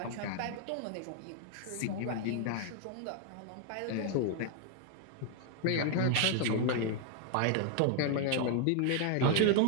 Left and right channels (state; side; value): different; both; correlation 0.00